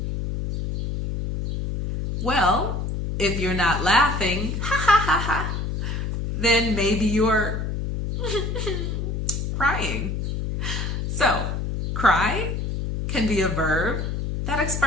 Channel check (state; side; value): noise; left; hum, 2 dB below the sound